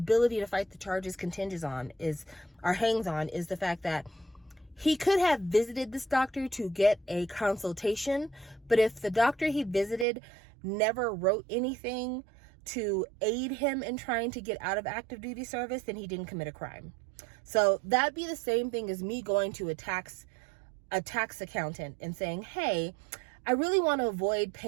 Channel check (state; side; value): drops out; left; at 10.1 s